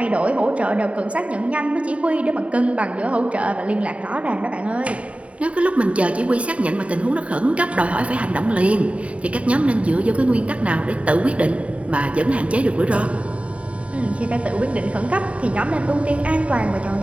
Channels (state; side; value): late; left; 0.064 ms